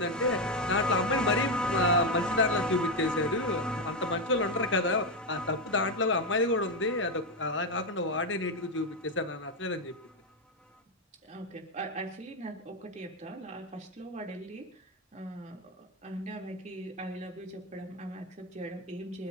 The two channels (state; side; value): normal; both; correlation 0.08